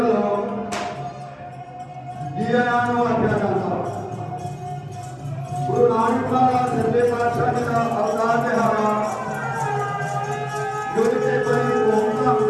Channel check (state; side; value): identical; both; correlation 1.00